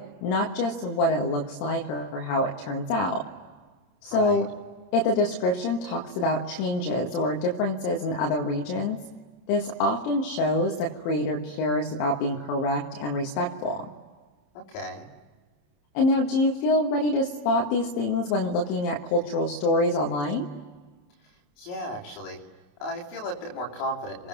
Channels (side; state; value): right; late; 27 ms